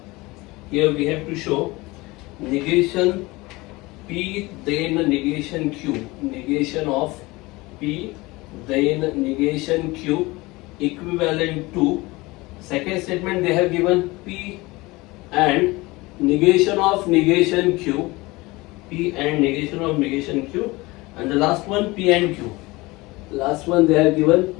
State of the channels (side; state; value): right; quieter; 22.1 dB